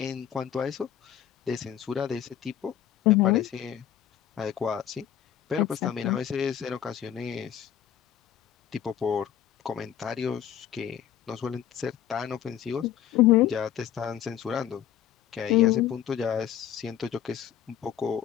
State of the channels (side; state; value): right; quieter; 10.3 dB